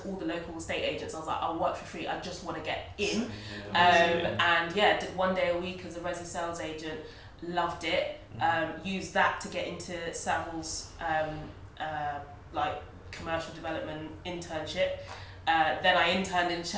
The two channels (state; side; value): identical; both; correlation 1.00